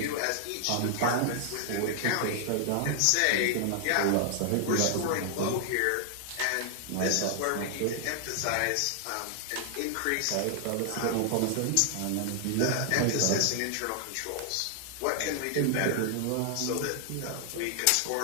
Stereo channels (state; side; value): different; both; correlation 0.00